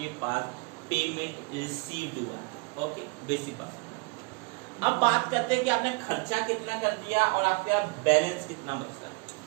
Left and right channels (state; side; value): quieter; left; 29.0 dB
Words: पास पेमेंट रिसीव्ड हुआ। ओके बेसिक बात। अब बात करते हैं कि आपने खर्चा कितना कर दिया और आपका बैलेंस कितना बच रहा है।